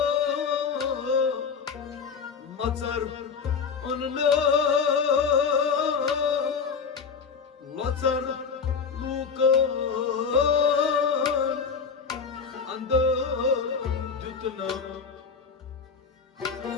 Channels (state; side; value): quieter; right; 5.8 dB